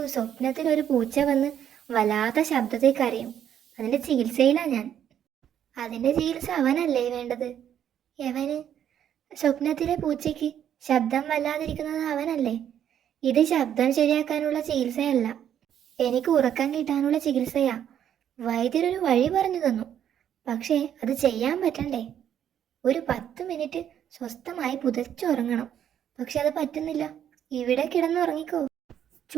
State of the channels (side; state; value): left; quieter; 9.8 dB